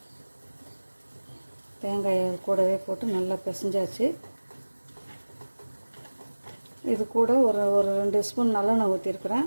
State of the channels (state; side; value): inverted; both; correlation -1.00